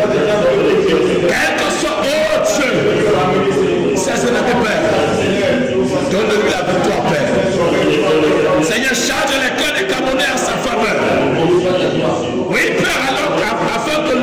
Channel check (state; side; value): identical; both; correlation 1.00